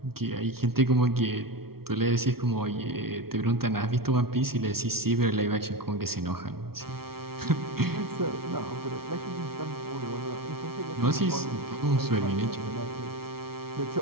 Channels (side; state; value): left; late; 0.94 ms